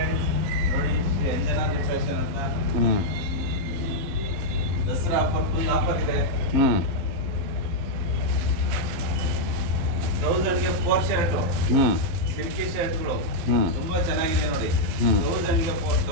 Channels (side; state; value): left; late; 12 ms